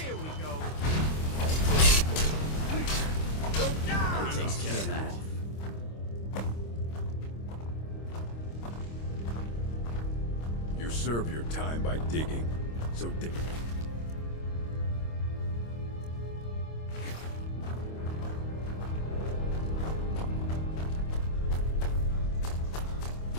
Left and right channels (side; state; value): right; late; 26 ms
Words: Here we go. Please! Don't die! Takes care of that. You serve your time by digging, so dig.